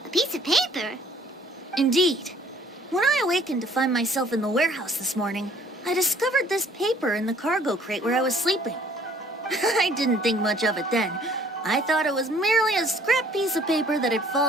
A piece of paper? Indeed. When I awakened to find myself in the warehouse this morning, I discovered this paper in the cargo crate where I was sleeping. I didn't think much of it then. I thought it was merely a scrap piece of paper that had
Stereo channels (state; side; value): normal; both; correlation 0.57